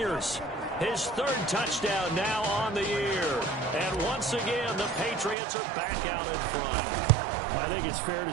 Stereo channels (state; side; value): drops out; left; at 5.4 s